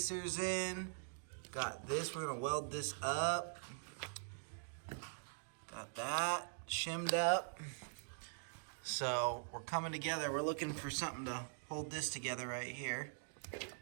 in. Got this, we're gonna weld this up. Got that shimmed up. So we're coming together. We're looking for something to hold this together right here.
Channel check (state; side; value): silent; left; digital silence